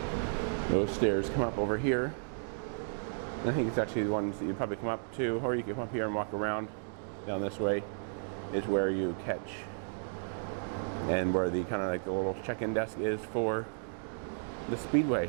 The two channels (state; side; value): silent; left; digital silence